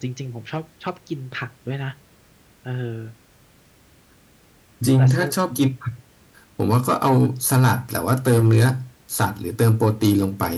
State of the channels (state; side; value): identical; both; correlation 1.00